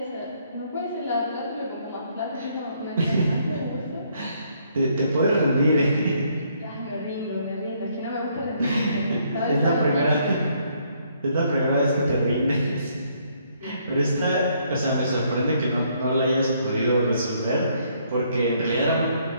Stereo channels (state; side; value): inverted; both; correlation -0.69